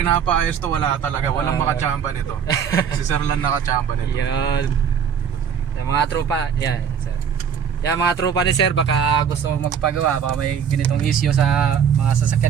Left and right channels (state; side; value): quieter; left; 7.6 dB